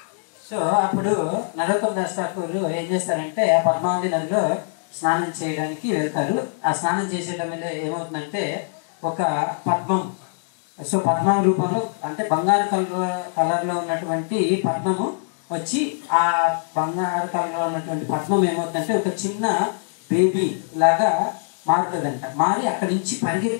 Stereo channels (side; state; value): right; silent; digital silence